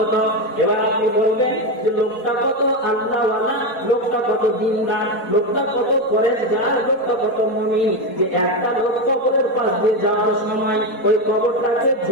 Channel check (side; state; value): right; late; 4.2 ms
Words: এবার আপনি বলবেন যে লোকটা কত আল্লাহওয়ালা, লোকটা কত দিনদার, লোকটা কত পরেশগার, লোকটা কত মুমিন, যে একটা লোক কবরের পাশ দিয়ে যাওয়ার সময় ওই কবরটাকে